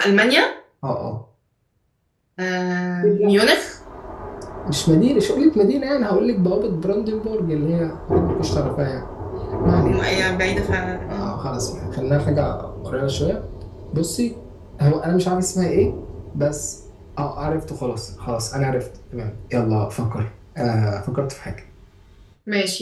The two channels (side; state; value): both; identical; correlation 1.00